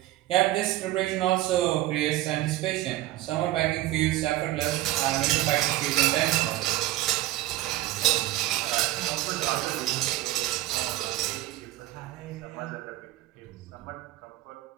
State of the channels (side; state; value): left; quieter; 16.0 dB